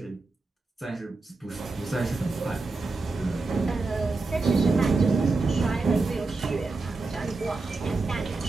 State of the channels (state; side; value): quieter; left; 3.7 dB